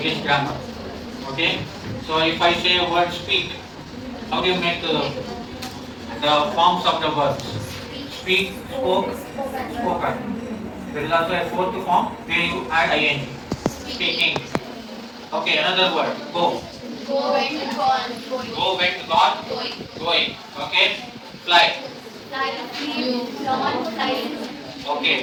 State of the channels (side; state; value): both; identical; correlation 1.00